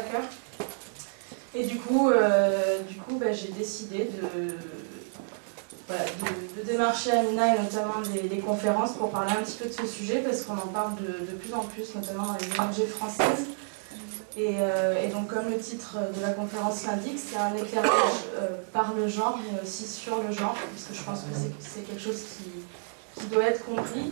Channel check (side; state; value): left; silent; digital silence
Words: Et du coup j'ai décidé de démarcher Amina et notamment des conférences pour parler un petit peu de ce sujet parce qu'on en parle de plus en plus, notamment dans les ONG françaises. Et donc comme le titre de la conférence l'indique, c'est un éclairage par le genre, mais aussi sur le genre, parce que je pense que c'est quelque chose qui doit être compris